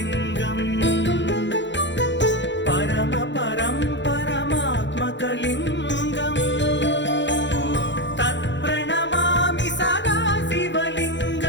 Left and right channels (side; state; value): right; late; 0.53 ms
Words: परमपरं परमात्मकलिङ्गम् तत्प्रणमामि सदा